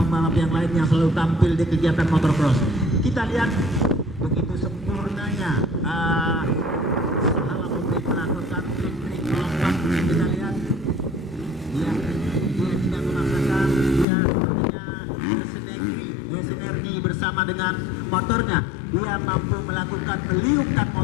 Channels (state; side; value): drops out; right; at 14.1 s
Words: yang lain yang selalu tampil di kegiatan motocross. Kita lihat begitu sempurnanya Sahala Obeng melakukan trik lompat. Kita lihat dia tidak memaksakan, dia sepertinya bersinergi bersama dengan motornya. Dia mampu melakukan meliupkan